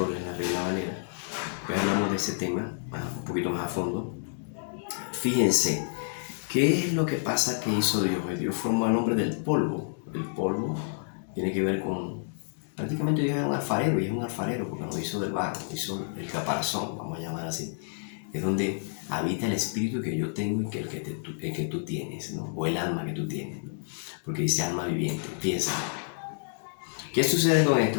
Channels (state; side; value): silent; right; digital silence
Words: la Reina Valera, pues hablamos de ese tema un poquito más a fondo. Fíjense, ¿qué es lo que pasa que hizo Dios? Dios formó al hombre del polvo. El polvo tiene que ver con... Prácticamente Dios era un alfarero, y es un alfarero porque no hizo del barro, hizo el caparazón, vamos a llamar así. Es donde habita el espíritu que yo tengo y que el que tú tienes, ¿no? O el alma que tú tienes, ¿no? Porque dice alma viviente. Piensa. ¿Qué sucede con esto?